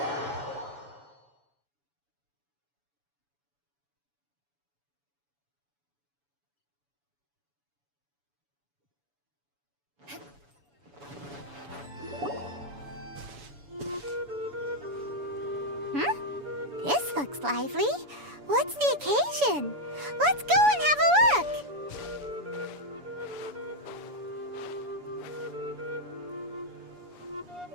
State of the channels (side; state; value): left; late; 7.0 ms